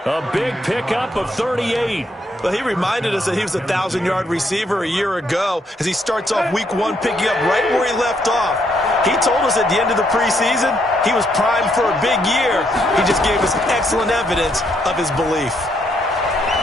A big pickup of 38. Well, he reminded us that he was a 1,000-yard receiver a year ago as he starts off week 1 picking up right where he left off. He told us at the end of the preseason he was primed for a big year. He just gave us excellent evidence of his belief.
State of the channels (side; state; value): both; normal; correlation 0.74